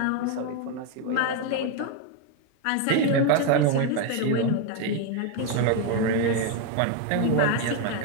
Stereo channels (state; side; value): different; both; correlation 0.01